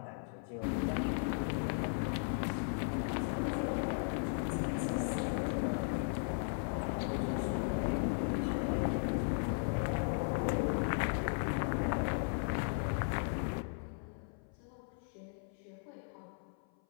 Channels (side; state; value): right; silent; 53 dB below the other